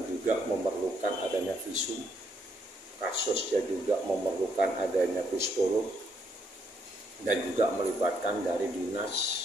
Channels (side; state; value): both; normal; correlation 0.73